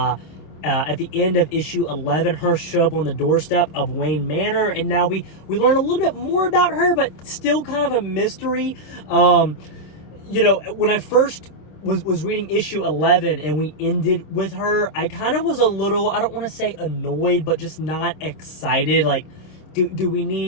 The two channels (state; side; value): late; right; 26 ms